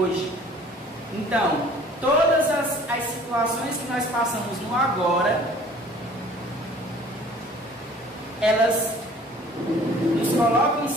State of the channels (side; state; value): both; normal; correlation 0.51